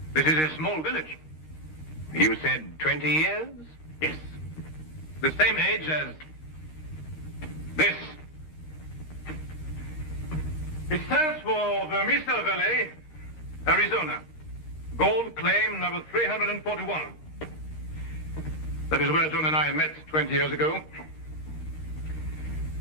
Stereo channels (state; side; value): late; right; 13 ms